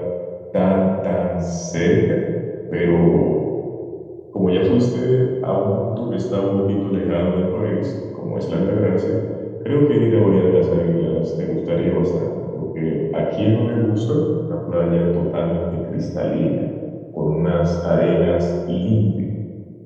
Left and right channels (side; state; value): both; identical; correlation 1.00